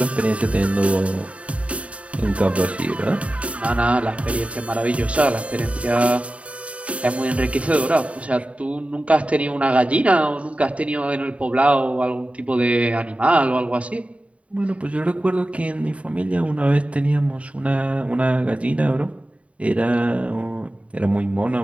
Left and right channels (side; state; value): left; late; 0.064 ms